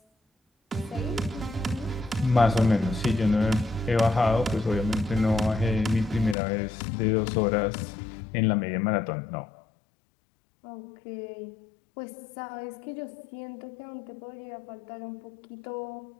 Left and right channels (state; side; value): drops out; right; at 6.4 s